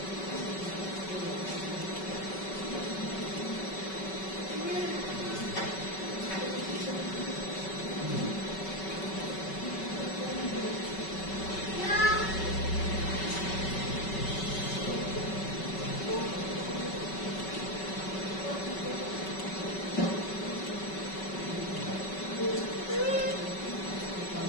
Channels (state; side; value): late; right; 5.3 ms